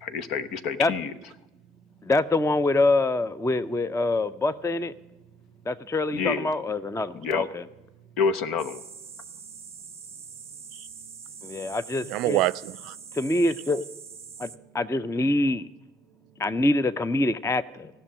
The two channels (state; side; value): normal; both; correlation 0.68